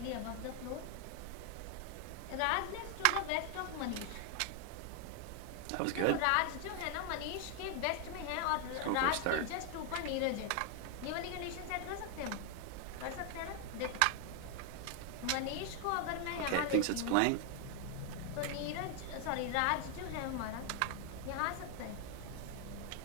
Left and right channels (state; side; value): different; both; correlation 0.00